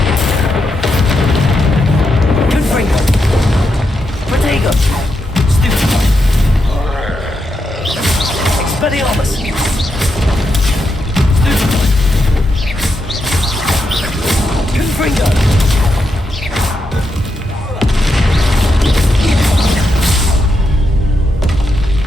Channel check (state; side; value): normal; both; correlation 0.84